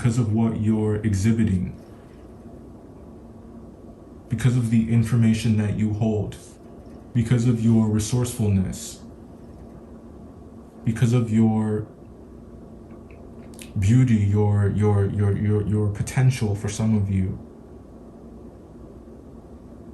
of what you're exhibiting, because of the information that you hold, because of your resourcefulness, because of your beauty, your potential for some of you.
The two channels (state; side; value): identical; both; correlation 1.00